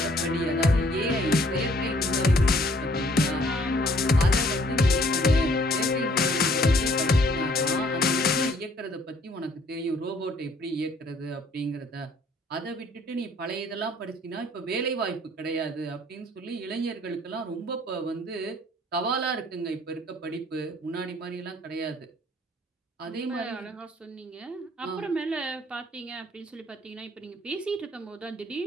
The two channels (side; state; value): both; normal; correlation 0.60